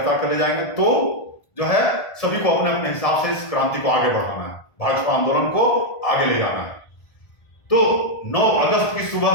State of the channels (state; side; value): late; right; 1.5 ms